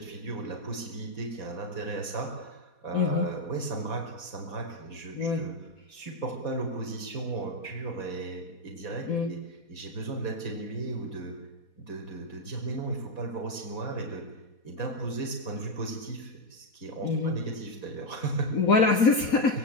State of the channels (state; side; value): late; right; 4.2 ms